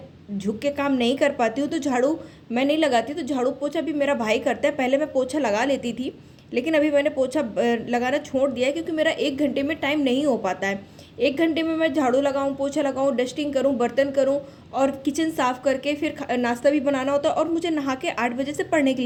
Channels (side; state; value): both; identical; correlation 1.00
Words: झुक के काम नहीं कर पाती हूँ, तो झाड़ू मैं नहीं लगाती। तो झाड़ू पोछा भी मेरा भाई करता है। पहले मैं पोछा लगा लेती थी, लेकिन अभी मैंने पोछा लगाना छोड़ दिया है क्योंकि मेरा 1 घंटे में टाइम नहीं हो पाता है। 1 घंटे में मैं झाड़ू लगाऊँ, पोछा लगाऊँ, डस्टिंग करूँ, बर्तन करूँ और किचन साफ़ करके फिर नाश्ता भी बनाना होता है और मुझे नहा के 8 बजे से पढ़ने के